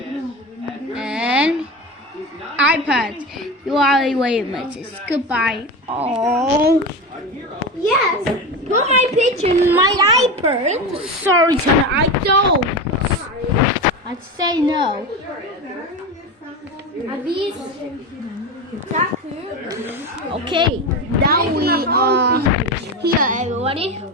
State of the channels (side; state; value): both; normal; correlation 0.22